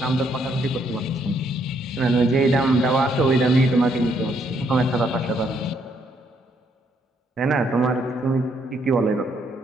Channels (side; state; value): both; normal; correlation 0.71